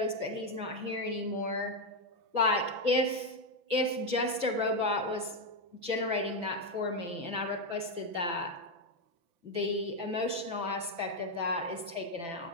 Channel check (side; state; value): left; late; 5.9 ms